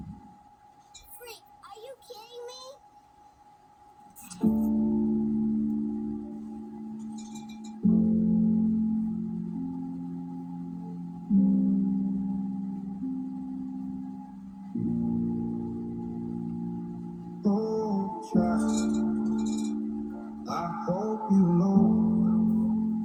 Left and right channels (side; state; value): both; identical; correlation 1.00